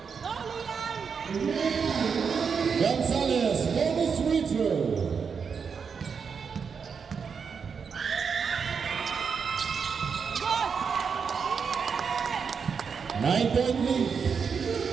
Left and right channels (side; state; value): left; quieter; 6.1 dB